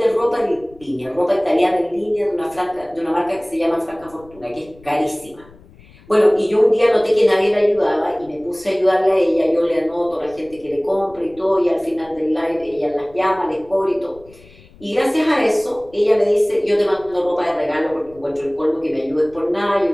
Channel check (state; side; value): noise; left; rumble, 25 dB below the sound